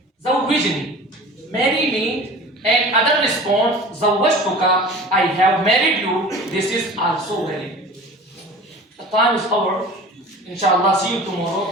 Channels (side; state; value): both; normal; correlation 0.39